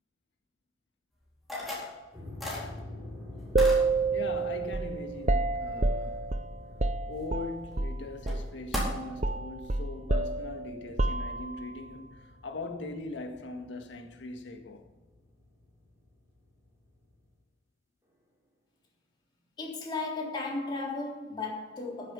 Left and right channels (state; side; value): normal; both; correlation 0.54